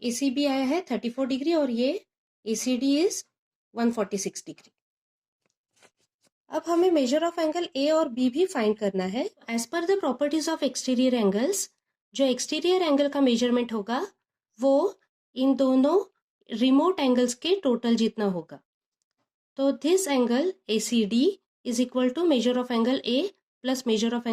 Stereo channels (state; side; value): identical; both; correlation 1.00